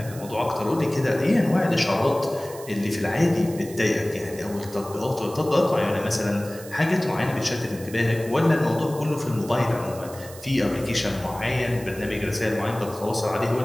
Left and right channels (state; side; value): noise; right; hiss, 17 dB below the sound